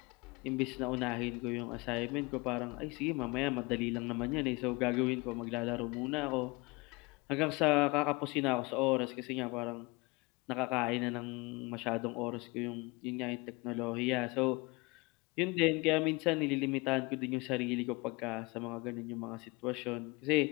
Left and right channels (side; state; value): right; quieter; 25.8 dB